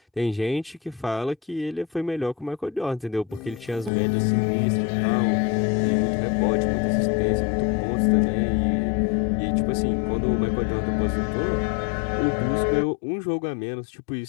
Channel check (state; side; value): drops out; right; at 3.9 s